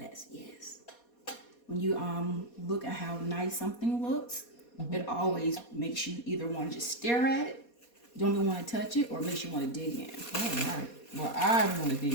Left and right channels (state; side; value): late; right; 4.2 ms